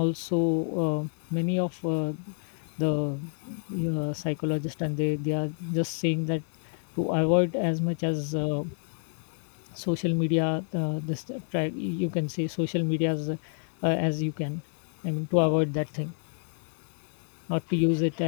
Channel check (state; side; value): silent; right; digital silence